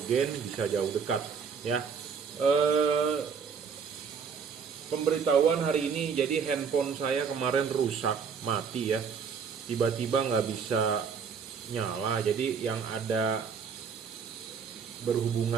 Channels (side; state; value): left; quieter; 6.2 dB